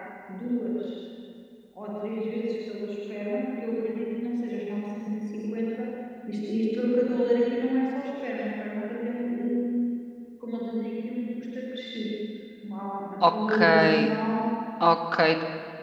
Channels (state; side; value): identical; both; correlation 1.00